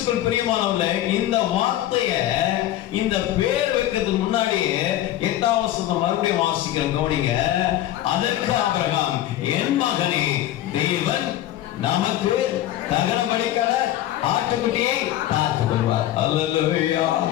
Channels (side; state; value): right; quieter; 13.4 dB